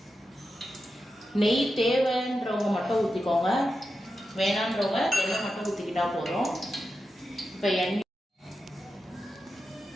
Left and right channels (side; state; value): both; normal; correlation 0.89